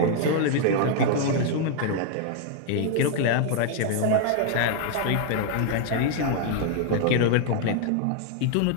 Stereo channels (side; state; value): both; different; correlation 0.00